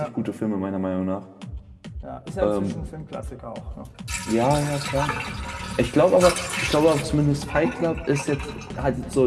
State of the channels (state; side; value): identical; both; correlation 1.00